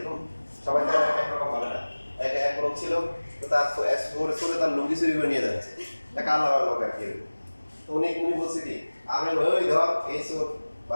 সবাই তো একরকম হবে না। এক লোক ছিল, তো তার সরে তার লুঙ্গি চুরি করে নিয়ে যাচ্ছে, একটা আলাদা লোক আর কি। তো উনি বলছে কি, আমি ওই ধর এই সব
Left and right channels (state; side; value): inverted; both; correlation -1.00